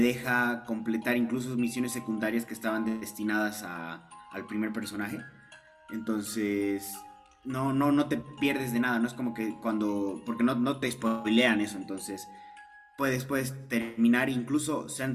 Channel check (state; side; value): identical; both; correlation 1.00